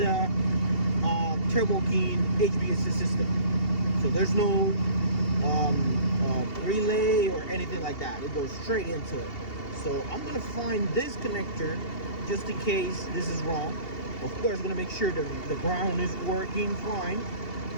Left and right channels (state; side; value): late; right; 2.7 ms